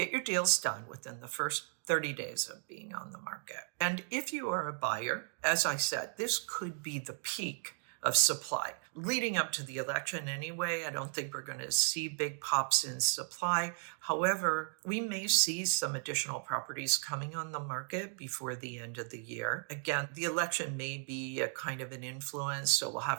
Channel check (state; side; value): silent; left; 54 dB below the other